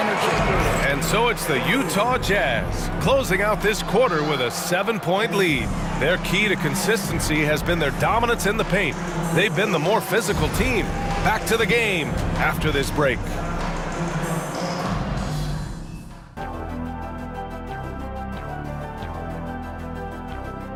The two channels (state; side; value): identical; both; correlation 1.00